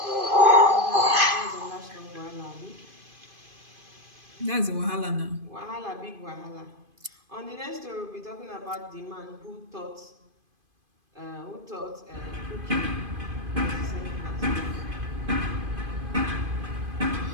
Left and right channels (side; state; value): left; late; 2.5 ms